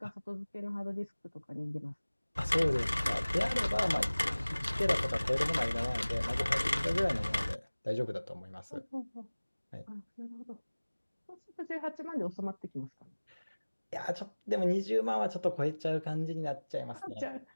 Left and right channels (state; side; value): inverted; both; correlation -1.00